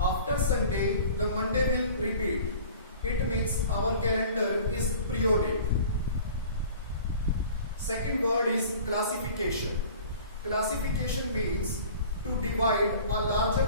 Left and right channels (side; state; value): both; inverted; correlation -0.45